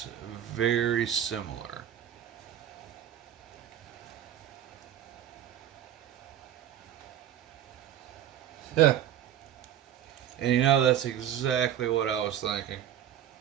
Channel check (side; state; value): left; quieter; 10.6 dB